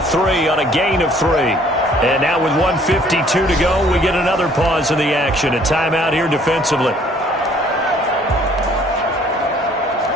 on a gain of 3. And now with 1:52 to go, we get another pause in the action. A timeout here defensively.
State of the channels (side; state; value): both; normal; correlation 0.58